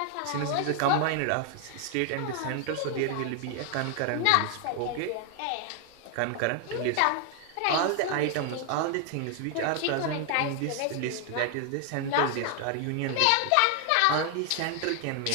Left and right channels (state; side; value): different; both; correlation 0.00